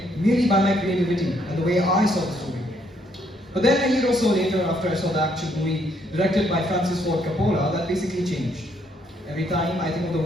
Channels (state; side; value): normal; both; correlation 0.71